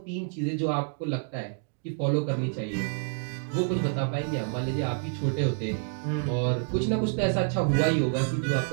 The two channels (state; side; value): silent; left; 59 dB below the other